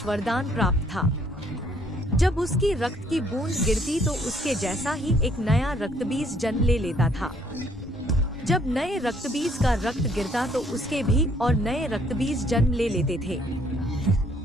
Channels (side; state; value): both; normal; correlation 0.65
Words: वरदान प्राप्त था। जब उसकी रक्त की बूंद गिरती तो उसके जैसा ही एक नया रक्तबीज जन्म ले लेता था। जब नए रक्तबीज का रक्त गिरता तो उसके भी और नए रक्तबीज जन्म ले लेते थे।